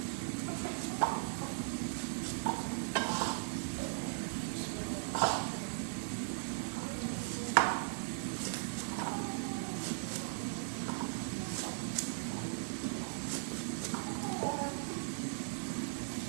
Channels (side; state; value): left; silent; digital silence